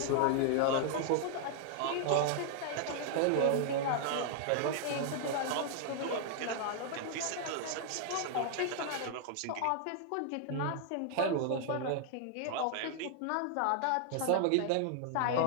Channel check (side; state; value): both; different; correlation 0.00